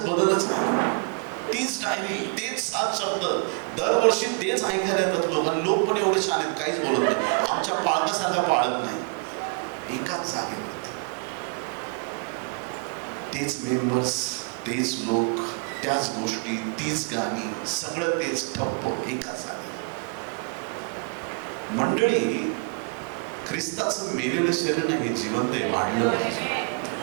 बदलच नाही. तीच डायरी, तेच 7 शब्द, दरवर्षी तेच ऐकायला येतात लोकांना. लोक पण एवढे छान आहेत, काहीच बोलत नाही. आमच्या पाळकासारखा पाळक नाही. एकाच जागेवरती तेच मेंबर्स, तेच लोक, त्याच गोष्टी, तीच गाणी, सगळं तेच ठप्प एकाच जागेवर. मंडळी, ख्रिस्ताचं मेलेलं शरीर नाही, हे जिवंत आहे, वाढलं पाहिजे.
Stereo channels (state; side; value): quieter; left; 39.8 dB